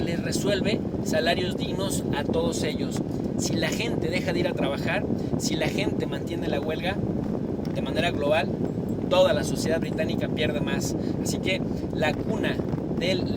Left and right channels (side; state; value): both; identical; correlation 1.00